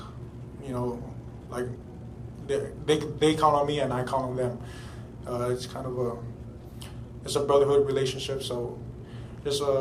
they count on me and I count on them. It's kind of it's a brotherhood relationship. So just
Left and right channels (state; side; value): identical; both; correlation 1.00